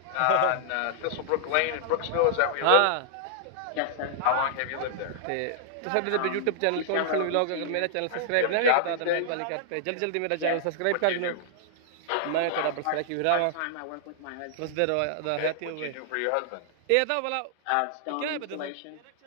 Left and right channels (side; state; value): both; different; correlation -0.01